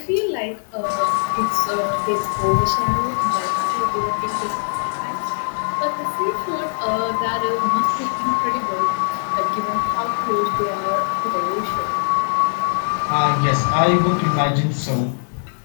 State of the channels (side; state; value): right; silent; digital silence